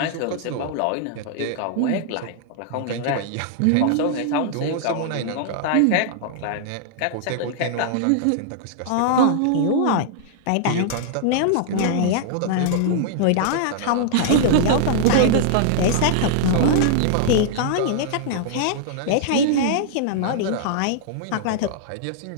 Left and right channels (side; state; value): both; different; correlation -0.01